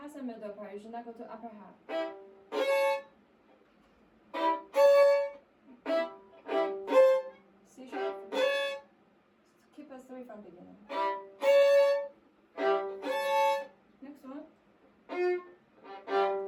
the middle part. You should not go to upper half. C sharp. Keep a 3 from beginning. Next one.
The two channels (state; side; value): identical; both; correlation 1.00